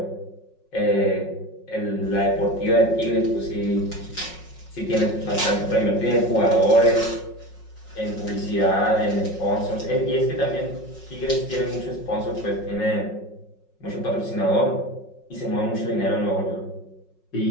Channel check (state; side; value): late; right; 5.5 ms